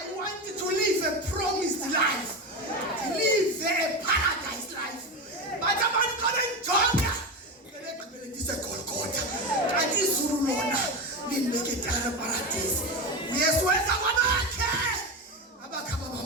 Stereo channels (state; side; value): normal; both; correlation 0.19